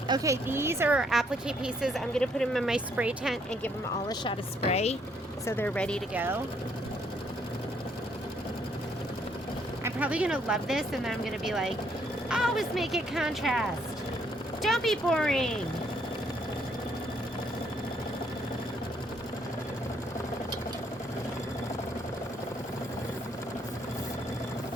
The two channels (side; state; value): both; normal; correlation 0.69